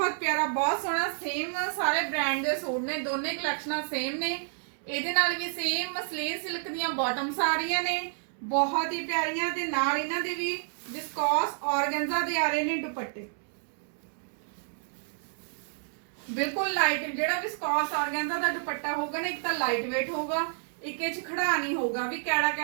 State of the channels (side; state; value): left; silent; digital silence